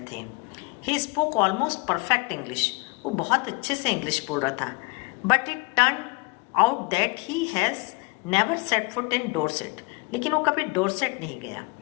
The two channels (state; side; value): quieter; right; 28.1 dB